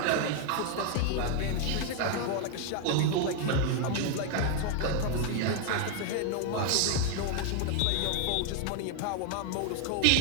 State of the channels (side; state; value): both; different; correlation 0.00